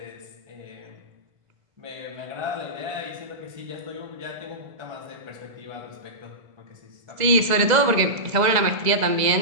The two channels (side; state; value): left; late; 2.0 ms